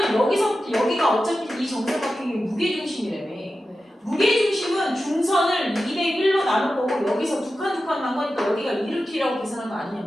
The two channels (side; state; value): both; normal; correlation 0.92